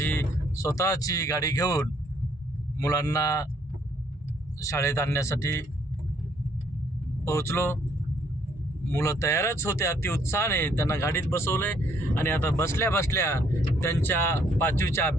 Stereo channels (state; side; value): normal; both; correlation 0.67